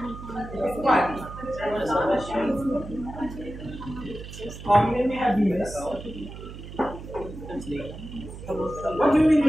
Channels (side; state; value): right; noise; hum, 12 dB below the sound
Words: What? Maybe have you missed? What do you mean